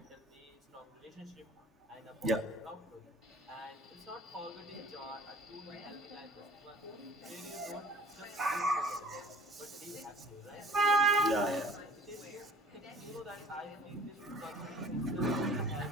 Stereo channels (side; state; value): both; normal; correlation 0.49